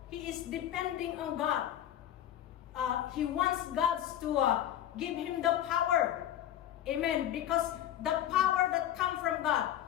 he is depending on God. He wants God to give him the power. Amen. Because the power that comes from God,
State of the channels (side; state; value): right; quieter; 11.6 dB